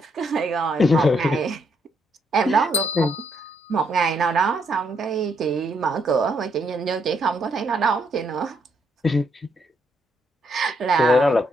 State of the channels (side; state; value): both; normal; correlation 0.75